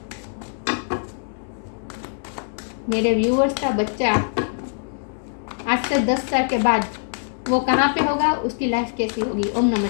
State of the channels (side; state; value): right; silent; digital silence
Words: मेरे व्यूअर्स का बच्चा आज से 10 साल के बाद वो कहाँ पे होगा, उसकी लाइफ कैसी होगी। ओम नमः